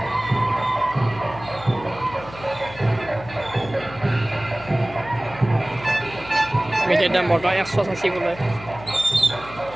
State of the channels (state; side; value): noise; left; hum, 16 dB below the sound